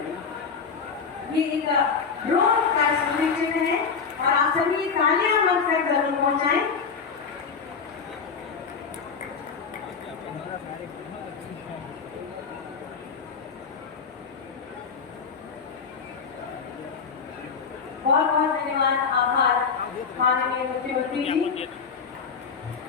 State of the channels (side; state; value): right; quieter; 5.7 dB